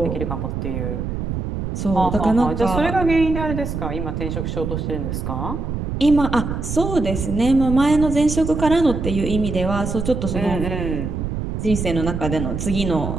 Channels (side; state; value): right; noise; rumble, 4 dB below the sound